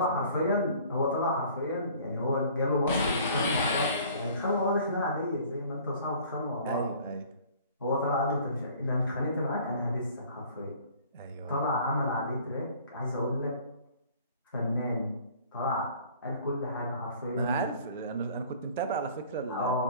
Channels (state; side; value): inverted; both; correlation -0.51